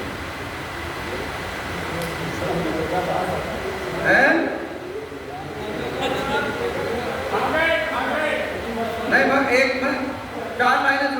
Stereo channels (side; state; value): both; identical; correlation 1.00